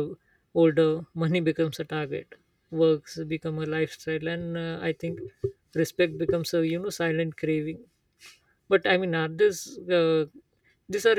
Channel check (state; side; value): identical; both; correlation 1.00